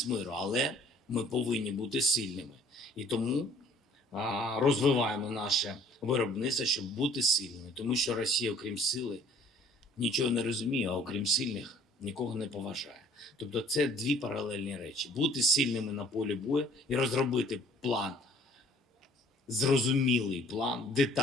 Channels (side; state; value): both; normal; correlation 0.55